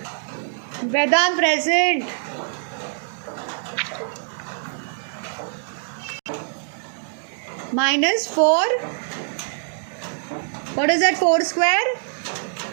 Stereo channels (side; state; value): left; silent; digital silence